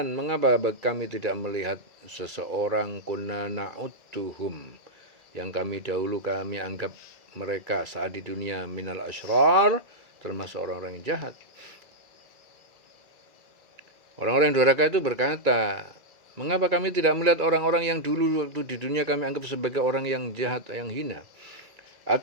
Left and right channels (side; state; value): left; late; 2.3 ms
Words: mengapa kami tidak melihat seseorang, kunna na'udduhum, yang kami dahulu kami anggap mereka saat di dunia, minal asyrar, termasuk orang-orang yang jahat. Orang-orang yang durhaka itu berkata, mengapa kami tidak melihat orang-orang yang dulu waktu di dunia kami anggap sebagai orang yang jahat, yang hina?